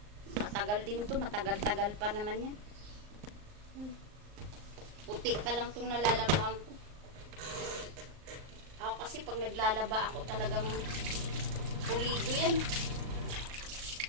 Matagal din to, matagal-tagal pa naman yan. Puti pa lang tong nalalabahan ko. Ako kasi pag naglalaba ako talagang pulido yan.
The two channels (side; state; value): left; late; 38 ms